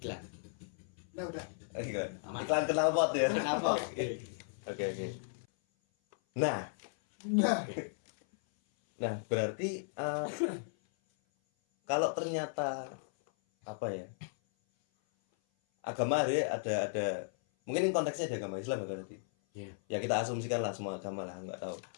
Nah udah. Iklan. Iklan knalpot ya. Kenapa? Oke. Nah, berarti kalau ternyata apa ya? Agama ada mungkin konteksnya ada agama Islam ya tadi. Iya. Ya kita asumsikan lah semua agama lah, nggak tahu.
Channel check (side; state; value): right; silent; 54 dB below the other